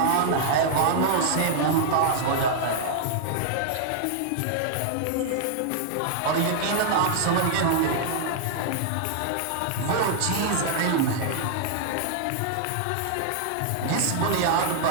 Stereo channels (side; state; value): both; different; correlation -0.01